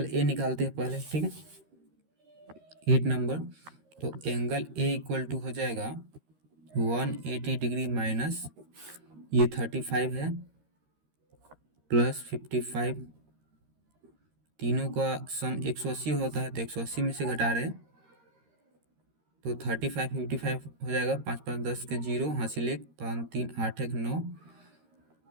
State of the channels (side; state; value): left; late; 13 ms